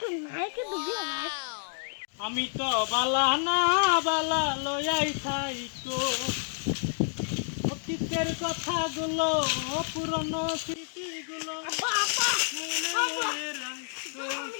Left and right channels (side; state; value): right; silent; digital silence